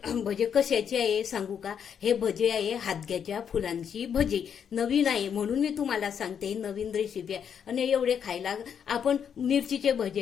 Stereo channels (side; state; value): right; quieter; 7.8 dB